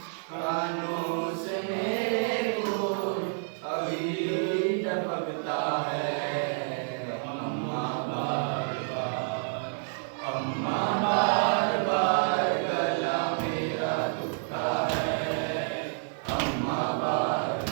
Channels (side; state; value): left; silent; digital silence